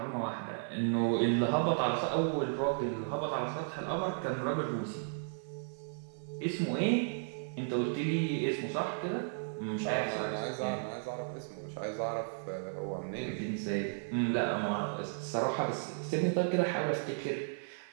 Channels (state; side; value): silent; left; 55 dB below the other